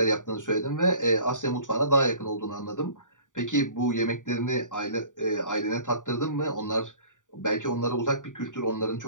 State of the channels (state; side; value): late; right; 0.87 ms